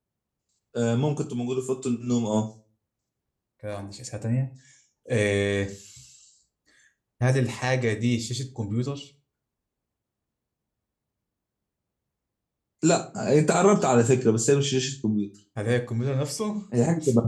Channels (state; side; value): identical; both; correlation 1.00